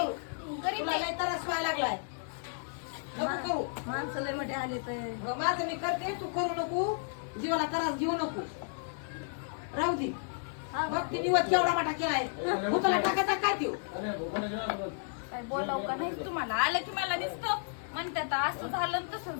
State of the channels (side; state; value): right; silent; 56 dB below the other